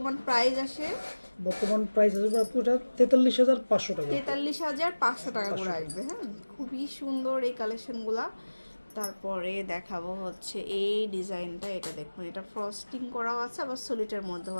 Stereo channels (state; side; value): inverted; both; correlation -1.00